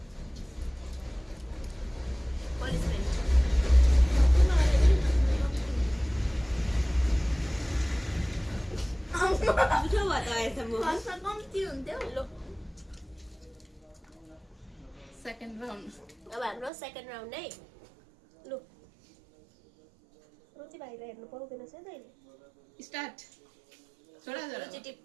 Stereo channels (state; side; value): drops out; left; at 16.7 s